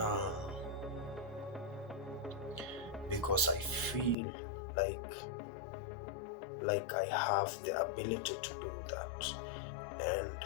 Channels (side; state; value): right; drops out; at 4.2 s